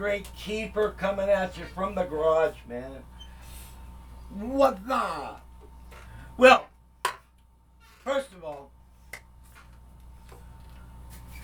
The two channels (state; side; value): identical; both; correlation 1.00